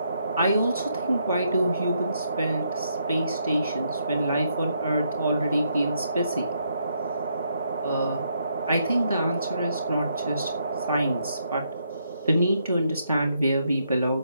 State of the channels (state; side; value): inverted; both; correlation -0.76